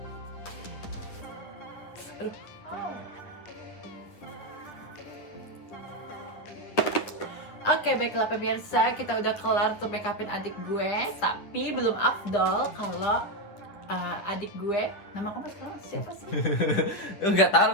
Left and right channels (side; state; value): right; late; 10 ms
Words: Aduh. Oke, baiklah pemirsa, kita udah kelar tuh make upin adik gue. Tapi belum afdol kalau adik gue, nama kamu sekarang siapa sih? Enggak tahu